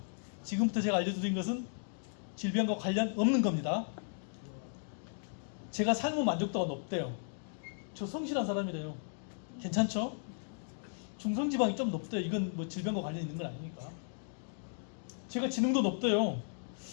지금부터 제가 알려드린 것은 질병과 관련 없는 겁니다. 제가 삶의 만족도가 높대요. 저 성실한 사람이래요. 괜찮죠? 중성지방이 좀 높대요. 이건 뭐 질병과 관련 있는 건 아니니까. 제가 지능도 높대요.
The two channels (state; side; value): silent; right; digital silence